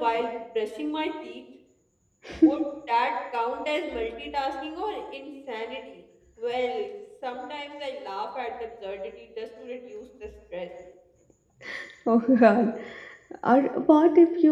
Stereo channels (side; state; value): both; identical; correlation 1.00